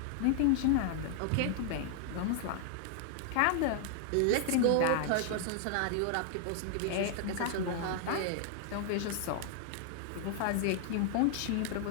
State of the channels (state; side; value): different; both; correlation 0.00